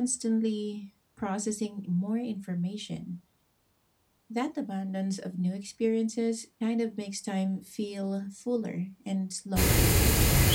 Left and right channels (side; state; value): both; identical; correlation 1.00